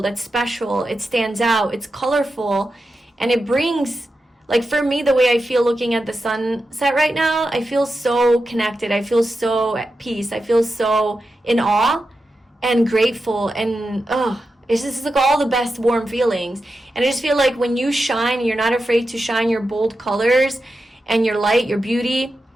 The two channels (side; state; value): both; normal; correlation 0.90